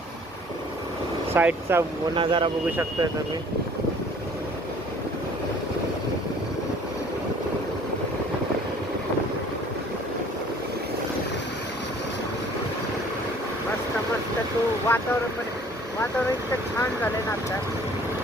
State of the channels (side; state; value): both; normal; correlation 0.53